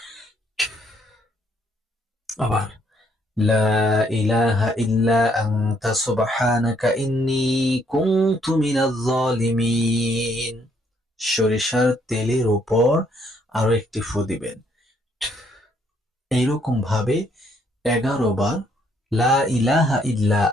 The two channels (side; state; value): both; normal; correlation 0.69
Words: আবার লা ইলাহা ইল্লা আনতা সুবহানাকা ইন্নী কুনতু মিনাজ জালিমিন। সরিষার তেলের উপর আরো একটি ফু দিবেন। এইরকম ভাবে 11 বার লা ইলাহা ইল্লা